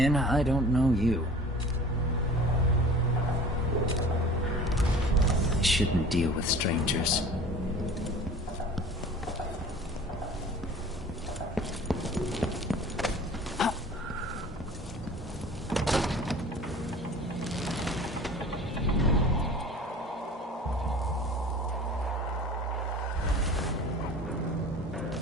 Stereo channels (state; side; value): normal; both; correlation 0.43